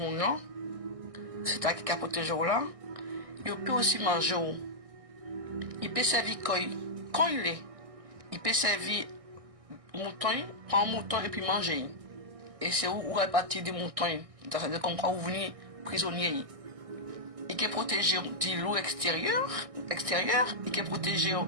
c'est à qui a protégé là, il peut aussi manger. Il peut servir quand il est. Il peut servir mouton, prendre un mouton et puis manger. Et c'est où répartir des moutons. C'est comme quand vous venez prisonnier. Il peut protéger du loup extérieur, il peut protéger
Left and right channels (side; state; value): left; late; 1.6 ms